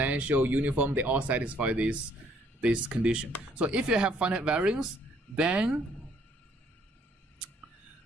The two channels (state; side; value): normal; both; correlation 0.65